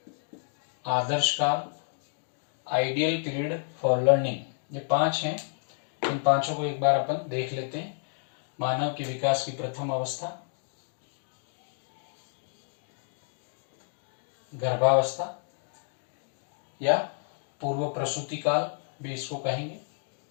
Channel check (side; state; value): right; silent; digital silence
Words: आदर्श काल, आइडियल पीरियड फॉर लर्निंग। ये 5 हैं, इन 5 को एक बार अपन देख लेते हैं। मानव के विकास की प्रथम अवस्था, गर्भावस्था या पूर्व प्रसूति काल भी इसको कहेंगे।